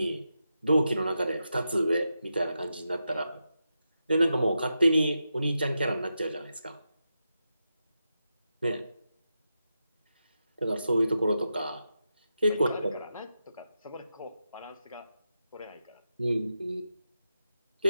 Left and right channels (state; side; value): inverted; both; correlation -0.88